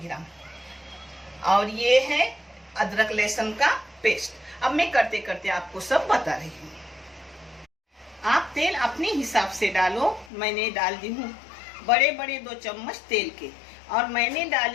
ग्राम। और ये है अदरक लहसुन का पेस्ट। अब मैं करते करते आपको सब बता रही हूँ। आप तेल अपने हिसाब से डालो। मैंने डाल दी हूँ बड़े बड़े 2 चम्मच तेल के, और मैंने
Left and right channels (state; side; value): drops out; right; at 10.3 s